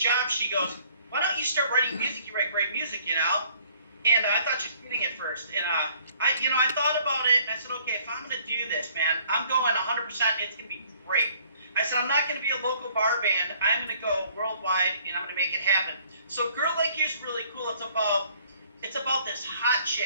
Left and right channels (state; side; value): inverted; both; correlation -0.59